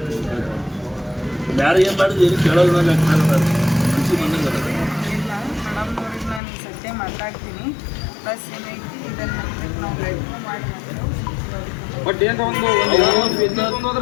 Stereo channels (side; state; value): right; drops out; at 6.4 s